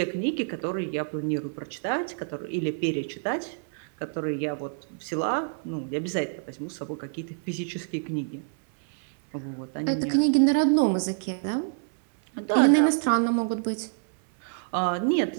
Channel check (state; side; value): silent; left; 60 dB below the other